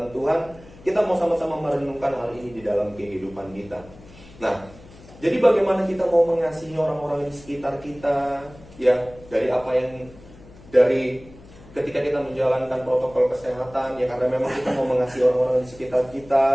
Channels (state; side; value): noise; left; hum, 22 dB below the sound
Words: Tuhan, kita mau sama-sama merenungkan hal ini di dalam kehidupan kita. Nah, jadi bagaimana kita mau mengasihi orang-orang di sekitar kita, ya dari ketika kita menjalankan protokol kesehatan, ya karena memang kita mau mengasihi orang-orang di sekitar